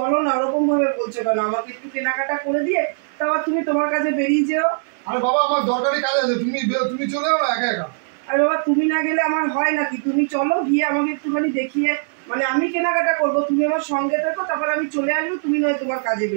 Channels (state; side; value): silent; left; digital silence